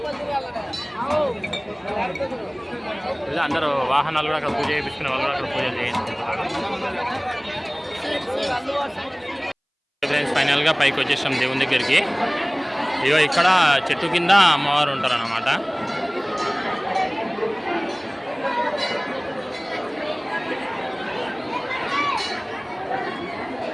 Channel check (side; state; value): both; identical; correlation 1.00